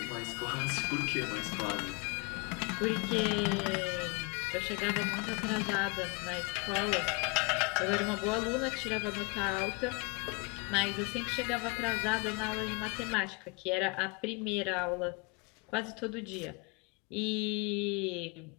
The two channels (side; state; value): right; quieter; 29.9 dB